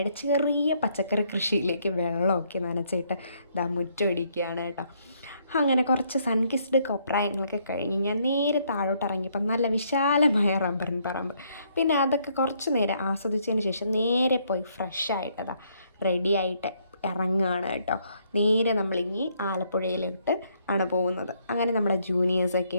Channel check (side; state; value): both; inverted; correlation -0.71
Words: ചെറിയ പച്ചക്കറി കൃഷിയിലേക്ക് വെള്ളമൊക്കെ നനച്ചിട്ട് മുറ്റമടിക്കുകയാണ് കേട്ടോ. അങ്ങനെ കുറച്ച് സൺകിസ്ഡ് കൊപ്രായങ്ങളൊക്കെ കഴിഞ്ഞ് ഞാൻ നേരെ താഴോട്ട് ഇറങ്ങിയപ്പോൾ നല്ല വിശാലമായ റബ്ബറിൻ പറമ്പ്. പിന്നെ അതൊക്കെ കുറച്ച് നേരം ആസ്വദിച്ചതിന് ശേഷം നേരെ പോയി ഫ്രഷായിട്ടതാ റെഡിയായിട്ട് ഇറങ്ങുകയാണ് കേട്ടോ. നേരെ നമ്മളിനി ആലപ്പുഴയിലോട്ട് ആണ് പോകുന്നത്. അങ്ങനെ നമ്മുടെ ജൂനിയേഴ്സൊക്കെ